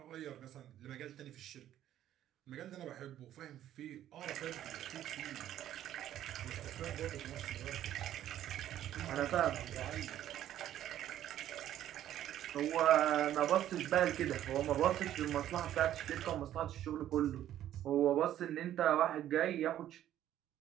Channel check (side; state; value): left; quieter; 11.9 dB